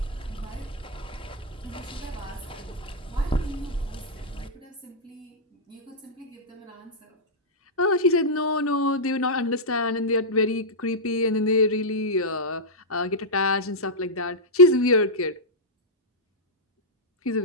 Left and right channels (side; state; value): both; normal; correlation -0.07